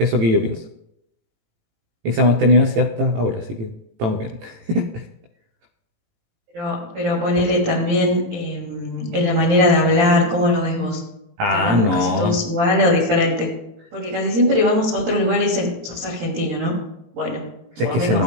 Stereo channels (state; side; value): late; left; 18 ms